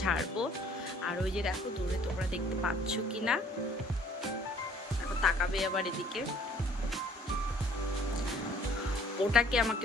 ঝাড়বো। আর ওই যে দেখো দূরে, তোমরা দেখতে পাচ্ছ কি না, এখন তাকাবে আবার এদিকে। ওটাকে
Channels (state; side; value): normal; both; correlation 0.56